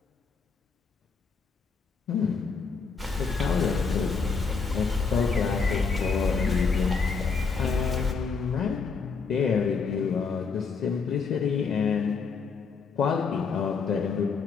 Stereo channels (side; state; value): right; quieter; 5.1 dB